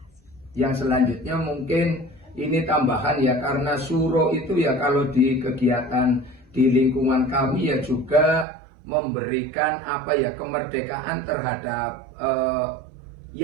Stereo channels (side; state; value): left; drops out; at 8.5 s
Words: Yang selanjutnya mungkin ini tambahan ya, karena suro itu ya kalau di kegiatan di lingkungan kami ya juga memberikan apa ya kemerdekaan terhadap